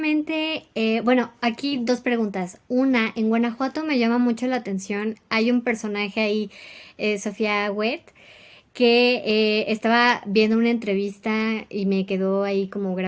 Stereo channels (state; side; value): identical; both; correlation 1.00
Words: bueno, aquí 2 preguntas. Una, en Guanajuato me llama mucho la atención, hay un personaje ahí, Sofía Huet, que estaba viendo una entrevista y me quedó ahí como